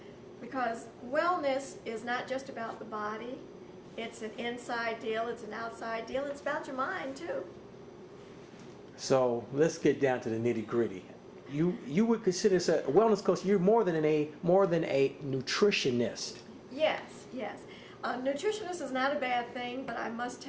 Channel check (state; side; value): identical; both; correlation 1.00